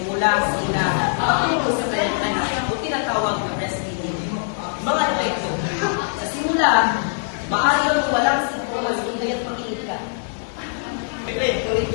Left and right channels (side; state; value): right; silent; digital silence